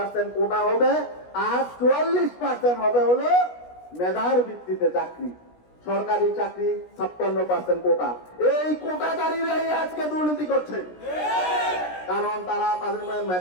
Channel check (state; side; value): late; right; 16 ms